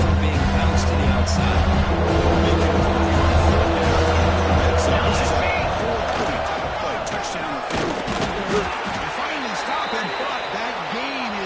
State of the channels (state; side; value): identical; both; correlation 1.00